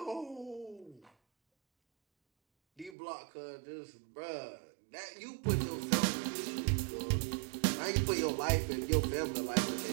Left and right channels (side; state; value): left; drops out; at 3.0 s